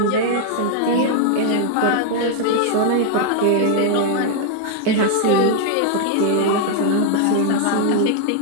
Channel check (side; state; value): both; different; correlation 0.00